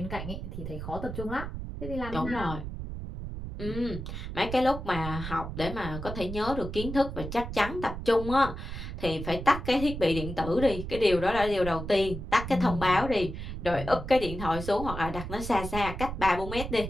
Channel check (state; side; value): noise; right; rumble, 7 dB below the sound